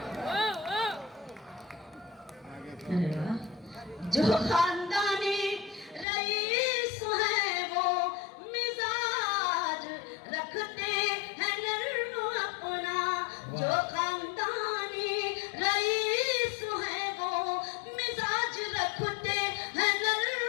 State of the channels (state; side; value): drops out; right; at 6.1 s